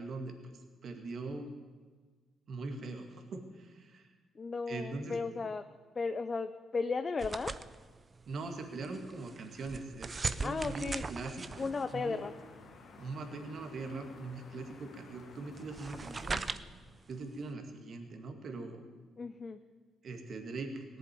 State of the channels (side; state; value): both; normal; correlation 0.84